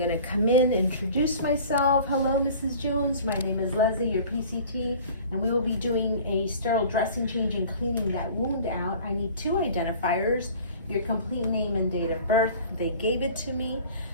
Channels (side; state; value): both; inverted; correlation -0.45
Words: come in, introduce myself. Hello, Mrs. Jones. My name is Leslie, your PCT, and we will be doing a sterile dressing change and cleaning that wound out. I need two identifiers, your complete name and date of birth. They gave it to me.